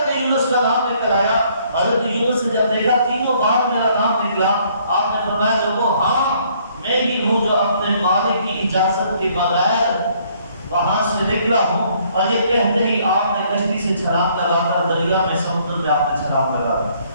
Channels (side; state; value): both; inverted; correlation -0.64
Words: یونس کا نام نکل آیا۔ حضرت یونس نے جب دیکھا تینوں بار میرا نام نکلا، آپ نے فرمایا لوگوں ہاں میں ہی ہوں جو اپنے مالک کی اجازت کے بغیر وہاں سے نکلا ہوں۔ اور یہ کہتے ہی آپ نے کشتی سے چھلانگ لگا کر دریا میں سمندر میں آپ نے چھلانگ لگایا۔